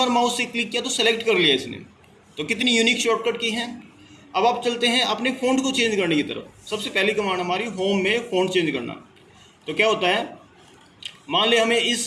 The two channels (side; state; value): both; identical; correlation 1.00